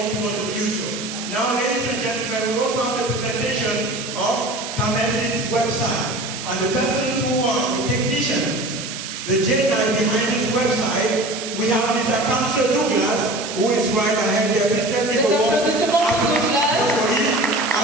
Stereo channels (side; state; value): right; noise; hiss, 8 dB below the sound